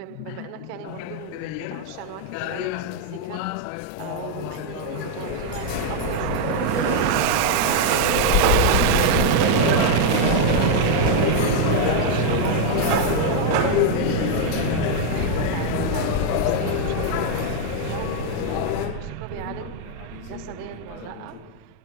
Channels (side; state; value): both; different; correlation 0.00